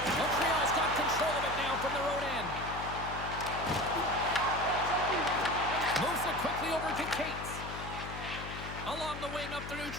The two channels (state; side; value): noise; left; hum, 9 dB below the sound